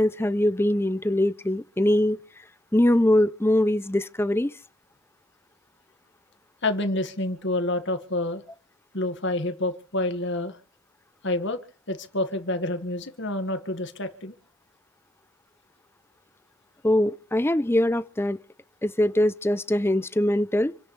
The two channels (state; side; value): normal; both; correlation 0.75